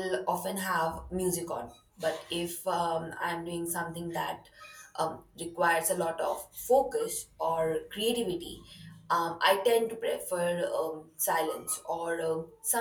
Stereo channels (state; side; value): identical; both; correlation 1.00